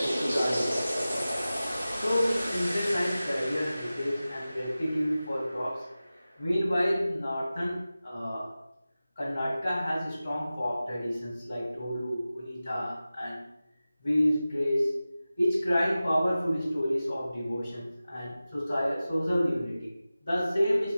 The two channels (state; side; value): inverted; both; correlation -0.96